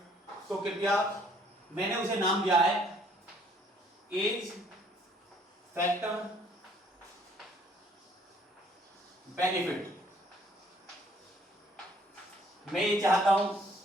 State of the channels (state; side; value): normal; both; correlation 0.62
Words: तो कृपया, मैंने उसे नाम दिया है एज फैक्टर बेनिफिट। मैं ये चाहता हूं